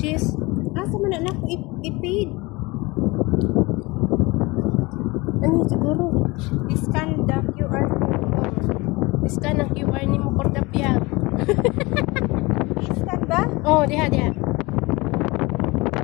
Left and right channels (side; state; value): right; quieter; 23.6 dB